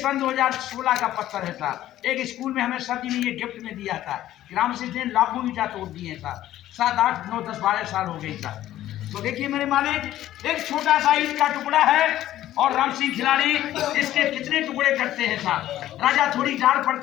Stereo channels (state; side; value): quieter; right; 13.5 dB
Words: 2016 का पत्थर है साहब। एक स्कूल में हमें सर जी ने ये गिफ्ट में दिया था। राम सिंह ने लाखों ईंटा तोड़ दिए साहब। 7, 8, 9, 10, 12 साल हो गई साहब। तो देखिए मेरे मालिक, एक छोटा सा ईंट का टुकड़ा है और राम सिंह खिलाड़ी इसके कितने टुकड़े करते हैं साहब। राजा थोड़ी डाल